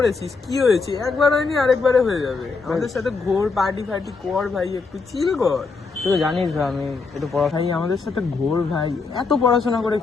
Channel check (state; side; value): quieter; right; 4.4 dB